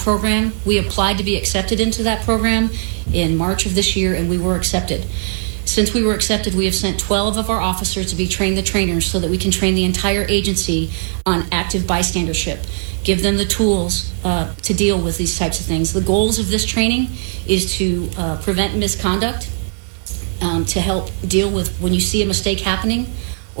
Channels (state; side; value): silent; left; 63 dB below the other